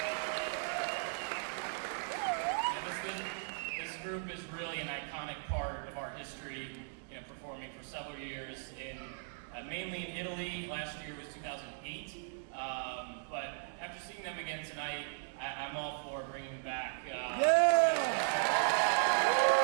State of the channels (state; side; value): silent; left; digital silence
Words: This group is really an iconic part of our history, performing for several years mainly in Italy. Last year was 2008. But after seeing them again tonight, I'm all for bringing them back.